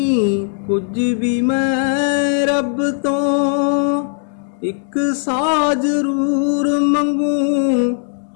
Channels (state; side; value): silent; right; 61 dB below the other